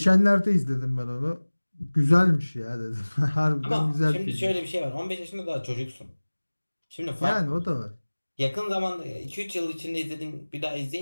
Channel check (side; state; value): both; inverted; correlation -1.00